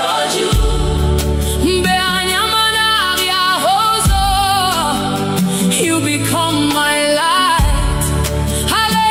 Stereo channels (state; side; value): identical; both; correlation 1.00